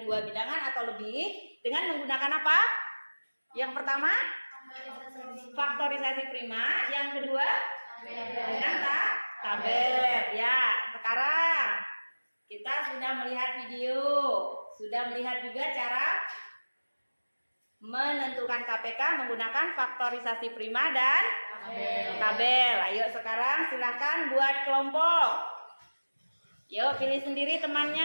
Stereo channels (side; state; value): both; inverted; correlation -1.00